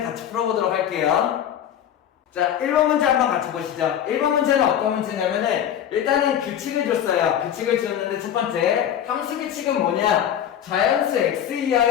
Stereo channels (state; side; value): quieter; right; 9.9 dB